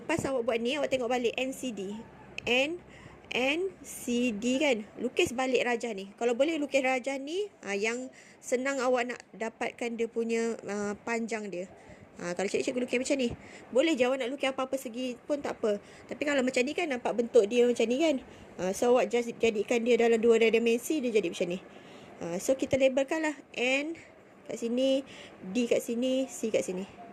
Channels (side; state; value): both; identical; correlation 1.00